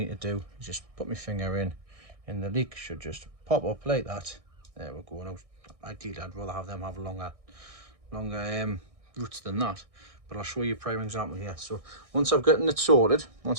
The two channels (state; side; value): late; left; 1.6 ms